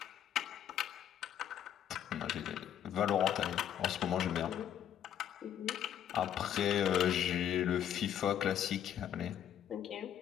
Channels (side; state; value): right; quieter; 9.9 dB